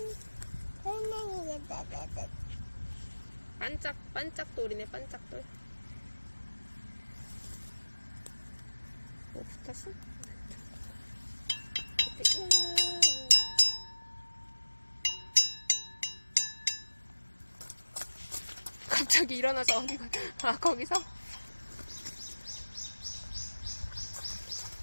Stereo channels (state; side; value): inverted; both; correlation -1.00